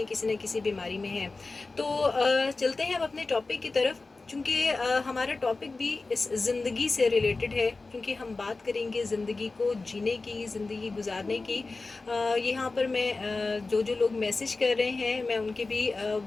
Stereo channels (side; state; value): right; quieter; 3.6 dB